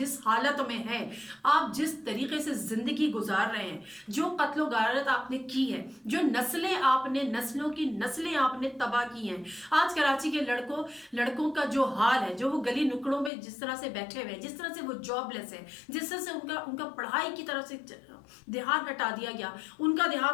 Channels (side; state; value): right; drops out; at 13.3 s